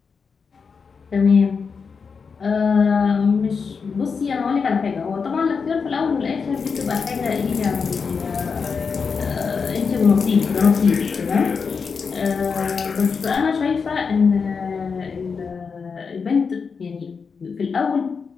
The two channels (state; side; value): quieter; right; 5.5 dB